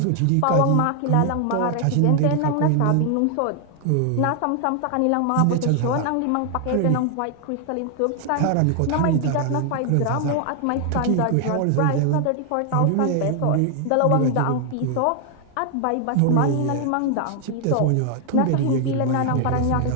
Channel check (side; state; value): both; different; correlation 0.00